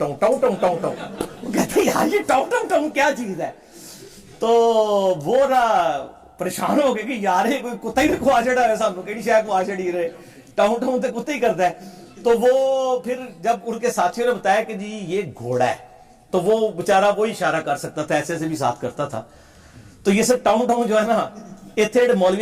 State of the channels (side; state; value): both; identical; correlation 1.00